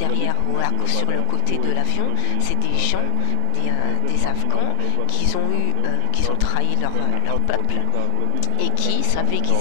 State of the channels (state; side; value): different; both; correlation 0.00